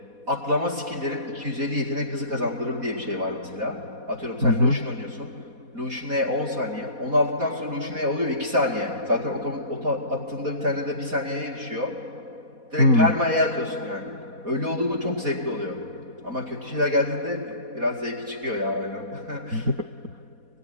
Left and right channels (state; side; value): late; left; 4.2 ms